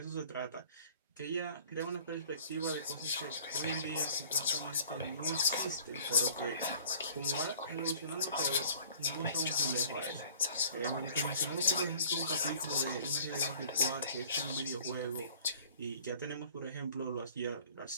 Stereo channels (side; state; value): both; inverted; correlation -0.52